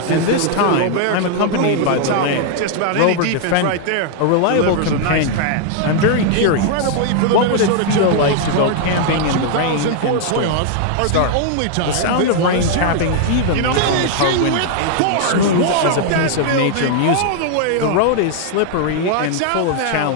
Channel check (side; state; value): both; different; correlation 0.00